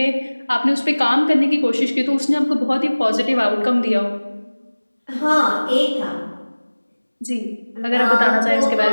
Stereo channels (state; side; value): inverted; both; correlation -1.00